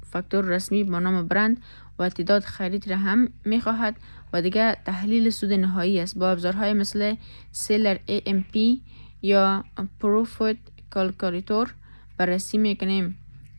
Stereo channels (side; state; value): both; inverted; correlation -1.00